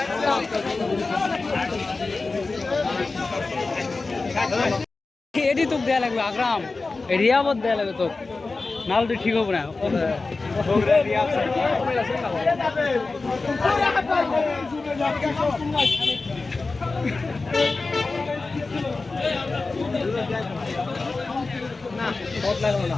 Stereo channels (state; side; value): quieter; right; 3.7 dB